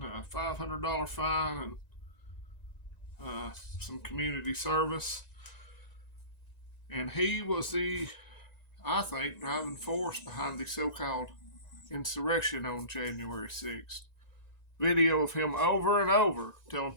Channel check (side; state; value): right; late; 1.9 ms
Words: a $500 fine, and some community service. And he was I think, driving force behind the so-called insurrection on January 6th. Video of him over and over telling